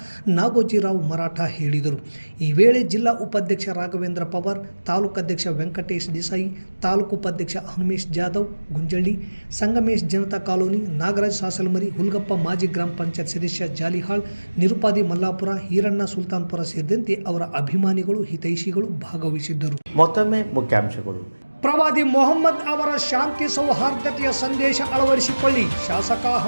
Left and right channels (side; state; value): both; inverted; correlation -1.00